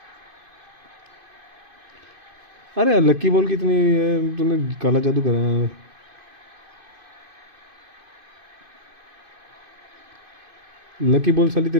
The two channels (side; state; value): left; late; 2.5 ms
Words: अरे यार लक्की बॉल कितनी तूने काला जादू करा है। लकी बॉल साली